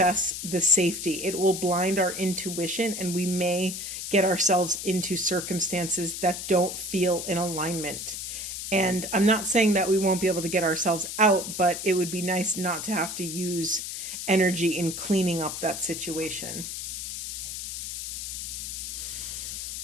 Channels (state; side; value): noise; left; hiss, 6 dB below the sound